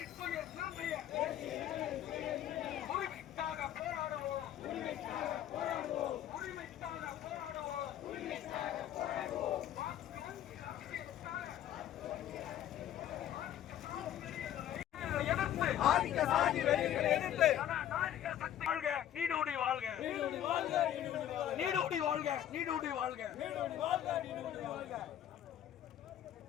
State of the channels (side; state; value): right; quieter; 11.3 dB